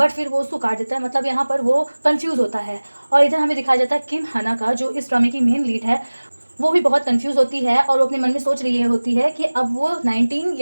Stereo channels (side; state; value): both; inverted; correlation -1.00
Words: फिर वो उसको काट देता है, मतलब यहाँ पर वो कंफ्यूज होता है। और इधर हमें दिखाया जाता है किम हना का, जो इस ड्रामे की मेन लीड है, वो भी बहुत कंफ्यूज होती है और वो अपने मन में सोच रही होती है कि अब वो 19